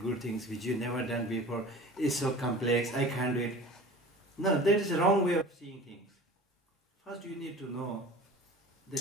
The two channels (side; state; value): both; normal; correlation 0.40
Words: things which you never done before. It's so complex, I can't do it. No, that is the wrong way of seeing things. First you need to know